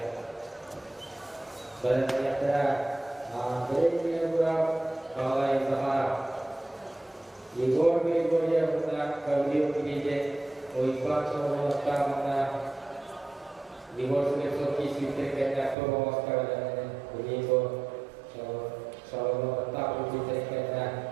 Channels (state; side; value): drops out; left; at 15.8 s